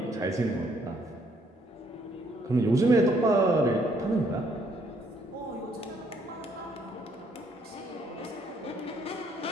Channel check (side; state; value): both; normal; correlation 0.68